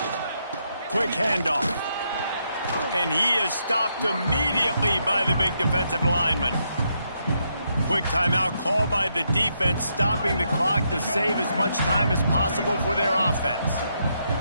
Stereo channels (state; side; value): inverted; both; correlation -0.79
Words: Quick handoff. And he is stopped immediately by the big defensive lineman. Quick timeout called by the defense, stopping the clock to save as much time as possible for their offense.